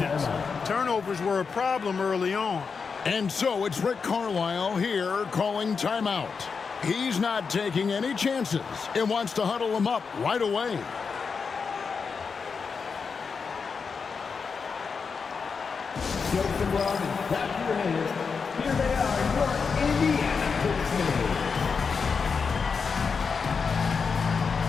Turnovers were a problem early on. And so it's Rick Carlisle here calling timeout. He's not taking any chances and wants to huddle them up right away. Jokes and love and clap your hands. Here they are, your Indiana Pacers.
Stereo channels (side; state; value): right; quieter; 5.4 dB